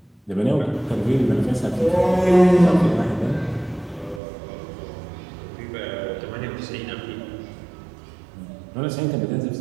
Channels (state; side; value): drops out; left; at 4.2 s